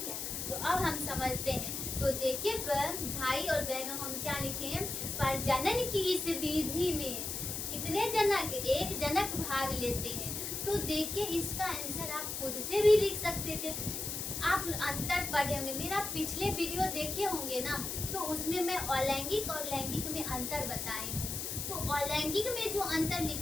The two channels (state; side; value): noise; left; hiss, 4 dB below the sound